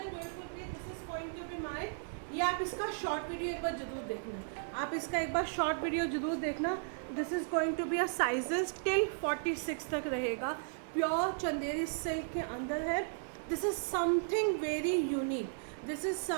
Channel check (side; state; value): left; silent; 54 dB below the other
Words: beautiful piece, this is going to be my, ये आप इसका शॉर्ट वीडियो एक बार जरूर देखना, आप इसका एक बार शॉर्ट वीडियो जरूर देखना। This is going to be a sizes till 46 तक रहेगा। प्योर चंदेरी सिल्क के अंदर है। This is something very unique, this is